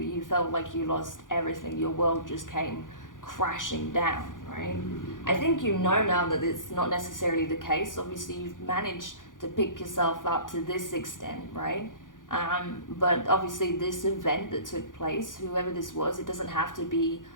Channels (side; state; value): right; late; 0.88 ms